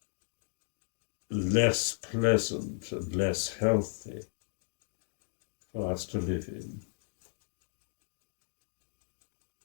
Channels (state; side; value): silent; right; digital silence